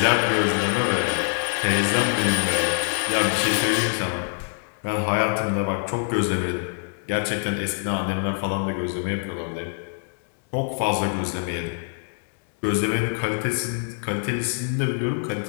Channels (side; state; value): right; silent; 61 dB below the other